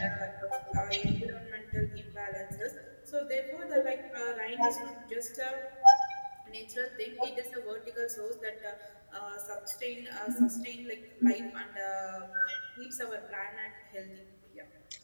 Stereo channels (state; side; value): inverted; both; correlation -1.00